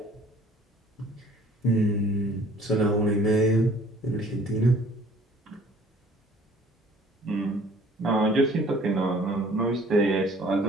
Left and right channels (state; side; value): normal; both; correlation 0.53